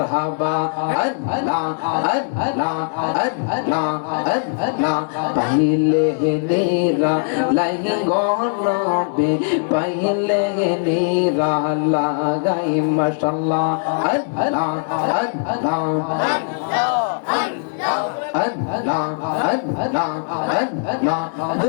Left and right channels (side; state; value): right; silent; digital silence